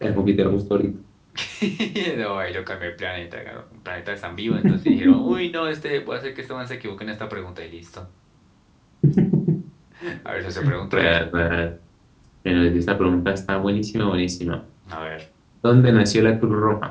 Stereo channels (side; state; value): both; identical; correlation 1.00